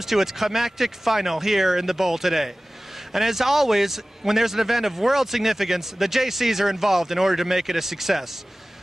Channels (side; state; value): both; normal; correlation 0.97